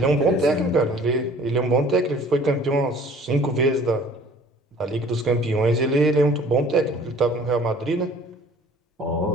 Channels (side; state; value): both; normal; correlation 0.51